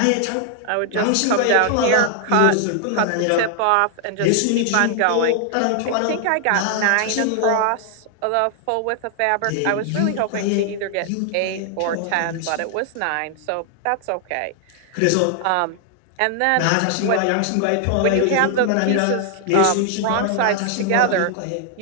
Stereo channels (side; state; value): both; different; correlation 0.00